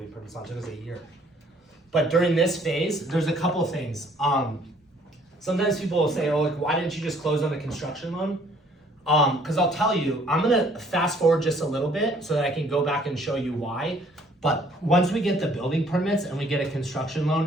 permits on, it took us a year. But during this phase, there's a couple of things. Sometimes people will say, oh, like, why didn't you just close on the construction loan? Because I'll tell you, I'm gonna fast forward just a little bit so that I can go back and show you why. But once we get the building permits and we get a construction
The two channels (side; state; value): both; normal; correlation 0.60